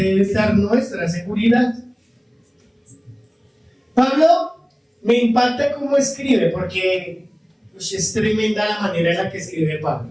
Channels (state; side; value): identical; both; correlation 1.00